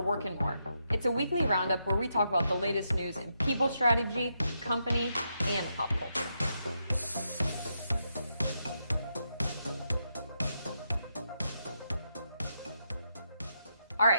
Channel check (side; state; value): both; inverted; correlation -0.81